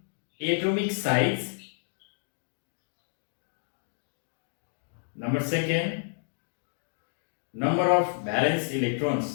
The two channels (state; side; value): silent; right; digital silence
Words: atomic size. Number 2, number of valence